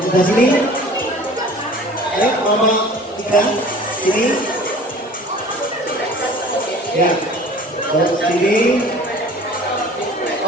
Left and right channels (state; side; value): normal; both; correlation 0.46